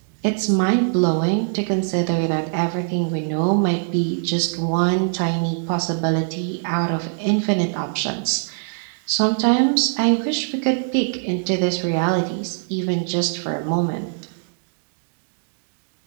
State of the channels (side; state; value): left; silent; digital silence